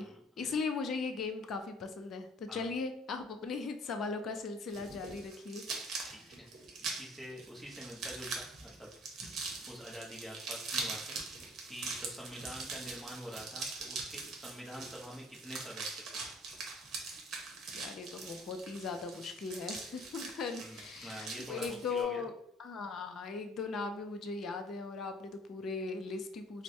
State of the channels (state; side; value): normal; both; correlation 0.54